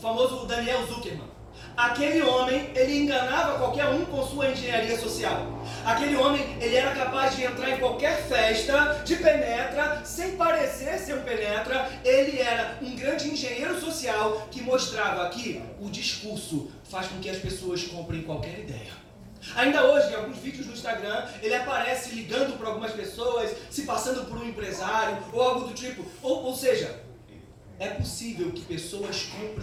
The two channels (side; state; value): both; identical; correlation 1.00